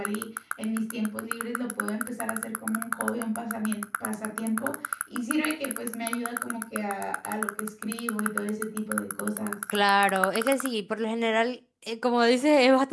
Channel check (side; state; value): both; identical; correlation 1.00